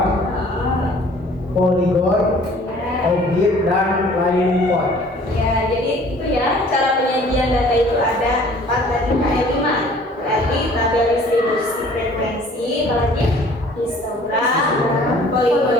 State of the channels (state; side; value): normal; both; correlation 0.53